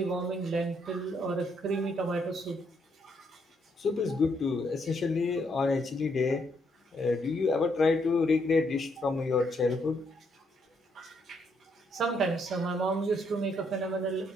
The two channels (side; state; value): both; normal; correlation 0.74